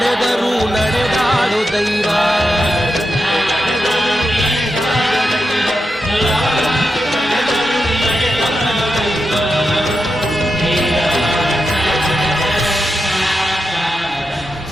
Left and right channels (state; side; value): normal; both; correlation 0.88